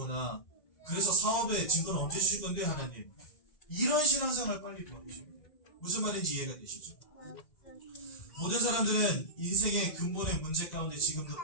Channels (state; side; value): late; right; 2.0 ms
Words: 그래서 사업에 증거는 언제 주실 건데 하나님, 이런 신앙생활 빨리 버리셔야 돼요. 무슨 말인지 이해가 되시죠? 모든 사람들은 인생의 근본의 문제 가운데 지금도